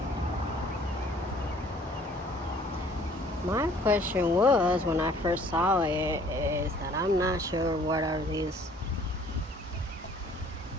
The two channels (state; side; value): normal; both; correlation 0.56